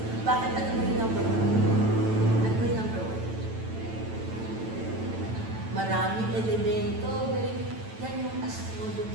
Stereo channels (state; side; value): late; left; 9.0 ms